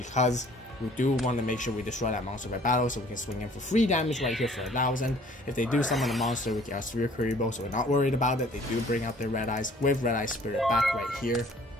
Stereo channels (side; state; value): both; normal; correlation 0.55